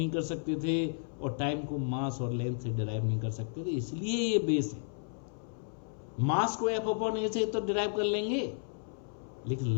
कर सकते थे, और टाइम को मास और लेंथ से डिराइव नहीं कर सकते थे, इसलिए ये बेस है। मास को एफ अपॉन ए से तो डिराइव कर लेंगे, लेकिन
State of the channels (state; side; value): silent; right; 56 dB below the other